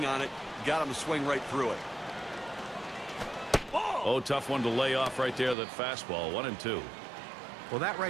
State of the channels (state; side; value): drops out; left; at 5.6 s